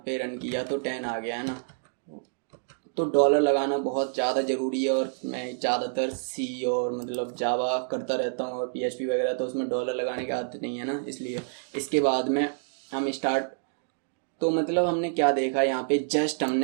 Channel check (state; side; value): silent; left; digital silence